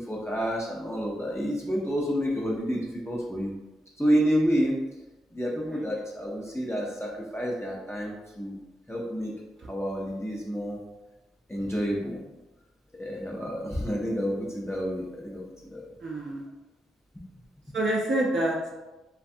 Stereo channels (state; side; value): normal; both; correlation 0.87